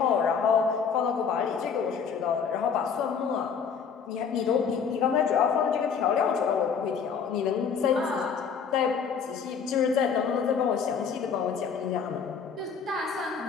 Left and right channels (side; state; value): right; quieter; 6.5 dB